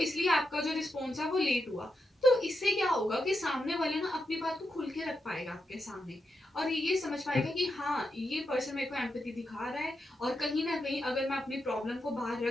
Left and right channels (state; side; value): normal; both; correlation 0.86